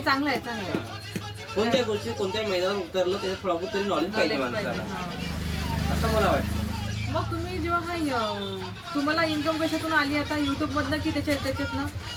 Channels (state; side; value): identical; both; correlation 1.00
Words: चांगलं आहे, चांगलं आहे. कोणत्या गोष्टी कोणत्या मैदानात उतरलं त्याच्यात थोडं तरी नॉलेज पाहिजे माणसाला, असं मला वाटतं. मग तुम्ही जेव्हा तुम्हाला इन्कम कशातून आली आता, युट्यूब मधनं की त्याच्यातनं